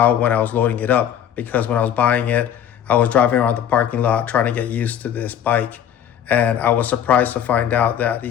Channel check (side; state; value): right; quieter; 9.5 dB